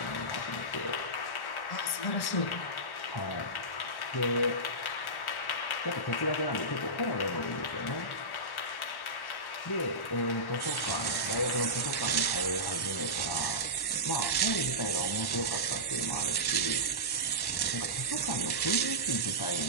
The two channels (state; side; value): late; right; 1.1 ms